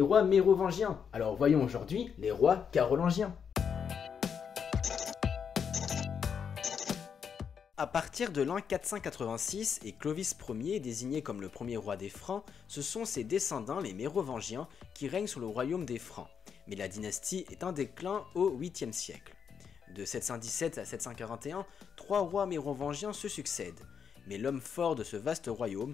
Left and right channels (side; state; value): right; quieter; 7.1 dB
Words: rois mérovingiens, alors voyons aujourd'hui les rois carolingiens. À partir de l'an 486 et Clovis Ier désigné comme le premier roi des Francs, ce sont ses descendants les mérovingiens qui règnent sur le royaume des Francs, mais la dynastie est en déclin au 8e siècle. De 717 à 741, trois rois mérovingiens se succèdent, mais l'homme fort de ce vaste